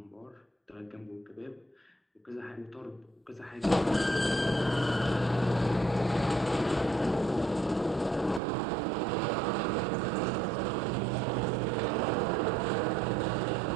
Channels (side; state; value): left; drops out; at 8.4 s